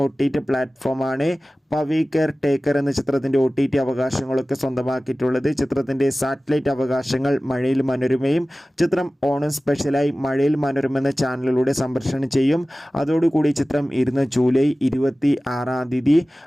OTT പ്ലാറ്റ്ഫോമാണ് പവി കെയർ ടേക്കർ എന്ന ചിത്രത്തിൻ്റെ OTT അവകാശങ്ങളൊക്കെ സ്വന്തമാക്കിയിട്ടുള്ളത്. ചിത്രത്തിൻ്റെ സാറ്റലൈറ്റ് അവകാശങ്ങൾ മഴയിൽ മനോരമയും ചിത്രം ഓണം സ്പെഷ്യലായി മഴയിൽ മനോരമ എന്ന ചാനലിലൂടെ സംപ്രേഷണം ചെയ്യും. അതോടുകൂടി ചിത്രം ജൂലൈ 26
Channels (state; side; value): normal; both; correlation 0.97